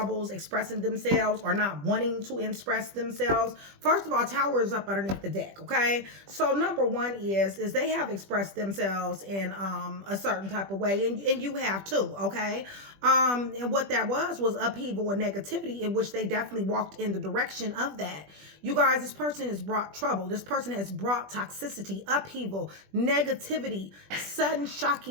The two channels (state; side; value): late; left; 20 ms